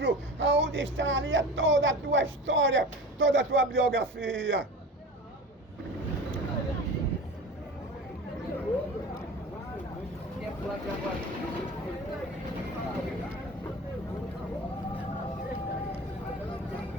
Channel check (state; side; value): normal; both; correlation 0.35